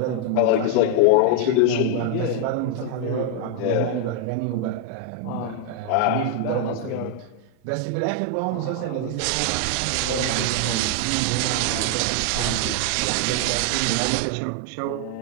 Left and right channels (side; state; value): both; different; correlation 0.00